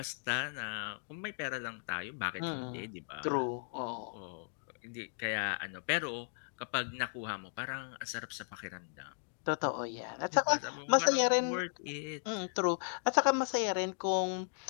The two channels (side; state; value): right; silent; digital silence